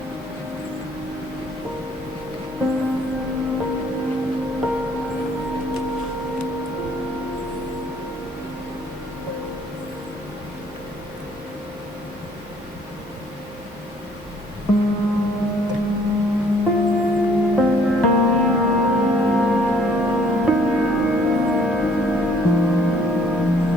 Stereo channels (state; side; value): normal; both; correlation 0.61